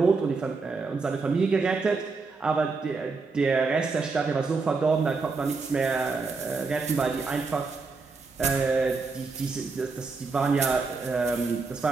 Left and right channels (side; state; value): left; quieter; 4.3 dB